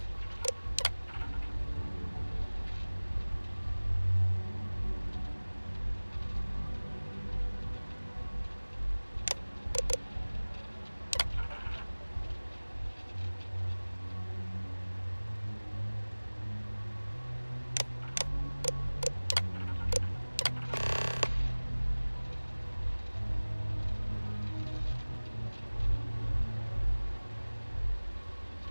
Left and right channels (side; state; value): both; inverted; correlation -1.00